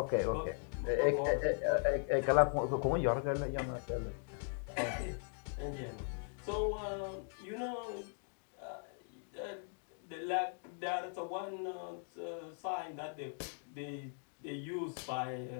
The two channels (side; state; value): right; silent; 52 dB below the other